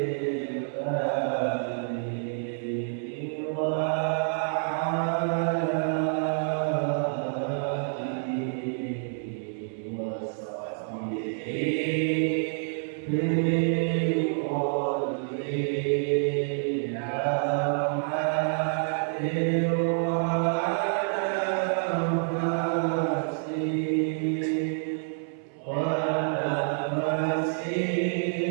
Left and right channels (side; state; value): left; silent; 59 dB below the other